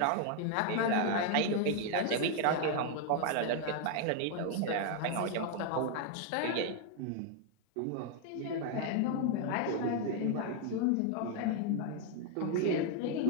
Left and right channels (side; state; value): both; different; correlation 0.00